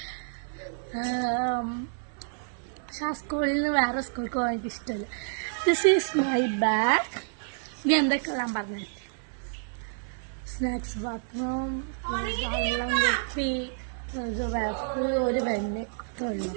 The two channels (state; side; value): silent; left; 59 dB below the other